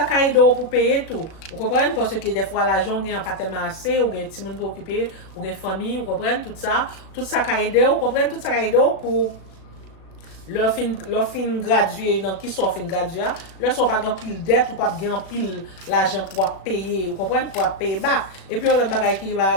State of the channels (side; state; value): right; late; 37 ms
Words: caille d'eau pour payer tout vous comprenez parce que des fois l'argent gagne pas tellement assez ou gagne petit monde pour occuper ou gagne famille vous comprenez tout ça caille d'eau vous comprenez tout ça caille d'eau pour leur fin gradué dans qui sont fin gradué leur sont pas grand pile dette ou pas grand pile l'argent pour payer vous comprenez pour payer bas et puis on l'autre bagaille qui